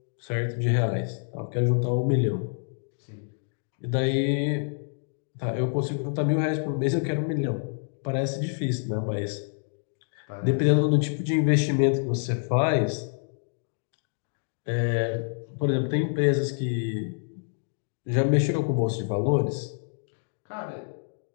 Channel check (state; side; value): silent; right; digital silence